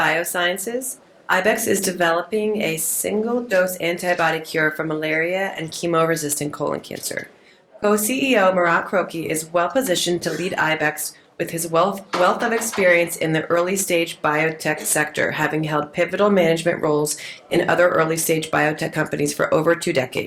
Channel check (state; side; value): identical; both; correlation 1.00